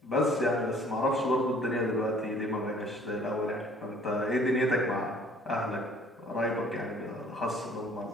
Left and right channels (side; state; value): both; normal; correlation 0.55